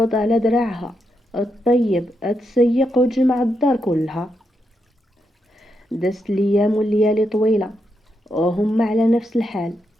على دراعها الطيب تسيق وتجمع الدار كلها. دازت الايام والليالي طويله وهم على نفس الحال.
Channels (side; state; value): both; normal; correlation 0.82